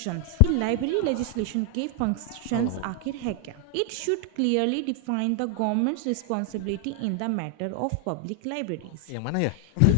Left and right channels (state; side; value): different; both; correlation 0.00